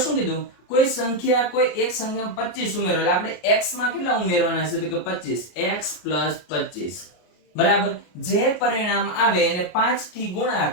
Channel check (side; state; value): right; late; 33 ms